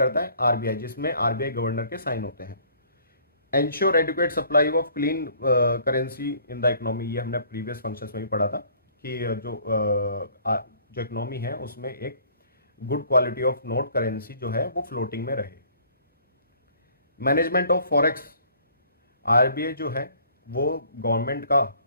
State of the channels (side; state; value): both; inverted; correlation -0.56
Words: है? आरबीआई, जिसमें आरबीआई गवर्नर के साइन होते हैं। Ensure adequate supply of clean currency in the economy, ये हमने प्रीवियस फंक्शंस में भी पढ़ा था कि जो इकोनॉमी है उसमें एक good quality of note currency जो है वो फ्लोटिंग में रहे। मैनेजमेंट ऑफ फॉरेक्स, आरबीआई जो है वो गवर्नमेंट का